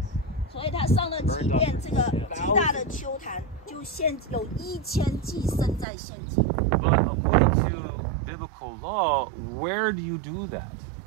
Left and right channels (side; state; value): left; drops out; at 5.9 s